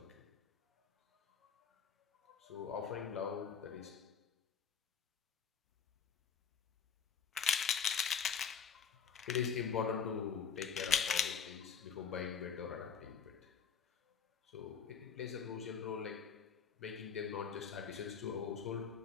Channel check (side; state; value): right; quieter; 6.9 dB